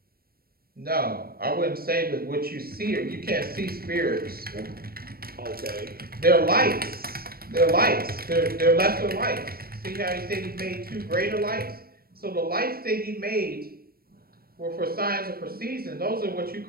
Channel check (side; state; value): left; late; 0.44 ms